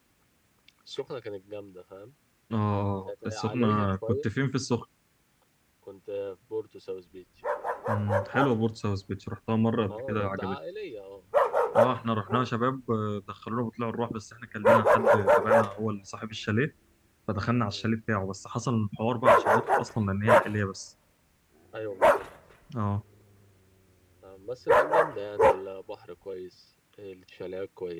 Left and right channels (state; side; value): identical; both; correlation 1.00